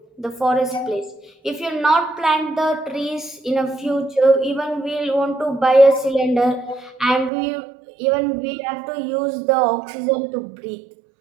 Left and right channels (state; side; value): drops out; left; at 7.3 s